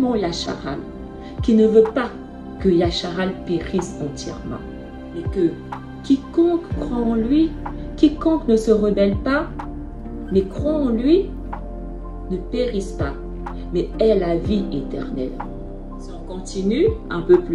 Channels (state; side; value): identical; both; correlation 1.00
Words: Yasharal qu'il ne veut pas que Yasharal périsse entièrement. Mais que quiconque croit en lui, quiconque ne se rebelle pas, mais croit en lui, ne périsse pas, mais ait la vie éternelle. Si on continue un peu